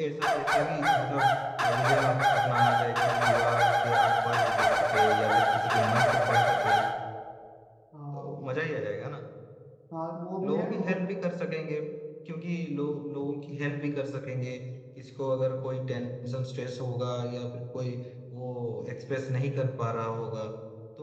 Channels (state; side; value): identical; both; correlation 1.00